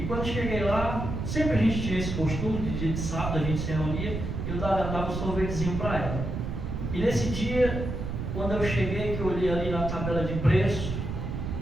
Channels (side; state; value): right; noise; rumble, 4 dB below the sound